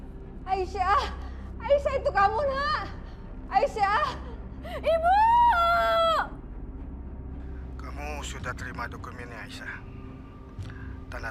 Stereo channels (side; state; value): both; identical; correlation 1.00